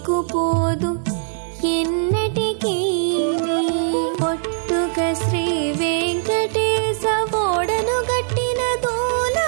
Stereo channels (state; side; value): silent; left; 65 dB below the other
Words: పోదు ఎన్నటికీ పొట్టుక శ్రీ వెంకటేశ ఓడను గట్టిన